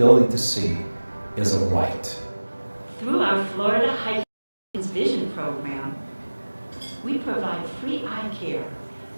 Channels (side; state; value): both; inverted; correlation -1.00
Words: to see is a right. Through our Florida High Vision Program, we provide free eye care